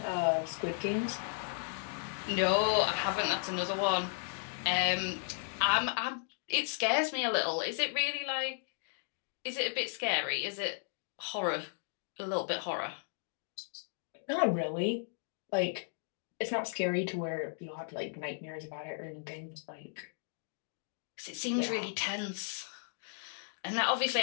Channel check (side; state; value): right; silent; digital silence